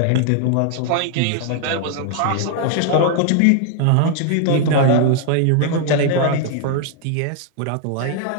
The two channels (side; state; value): both; different; correlation 0.00